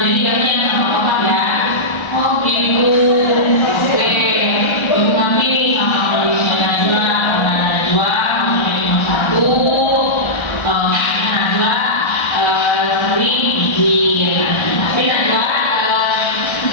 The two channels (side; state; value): right; late; 1.3 ms